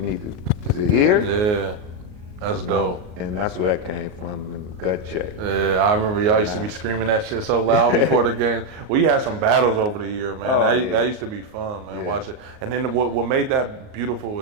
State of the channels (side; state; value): left; late; 38 ms